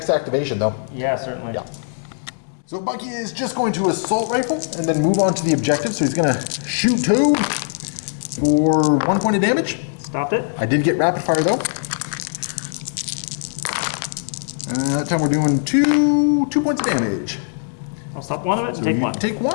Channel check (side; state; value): right; silent; 65 dB below the other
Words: activation though. Yeah, certainly. Yeah. So Bucky is just going to assault rifle and then move on to the objective. So he's going to shoot Toad for 1 point of damage. Stopped it. I did get rapid fire though. That time we're doing 2 points of damage. I'll stop one of it and So take you 1. Take